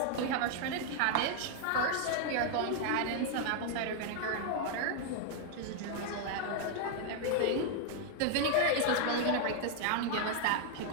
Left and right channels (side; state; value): both; different; correlation 0.00